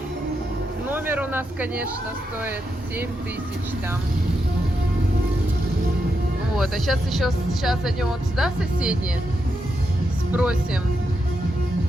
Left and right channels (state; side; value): normal; both; correlation 0.84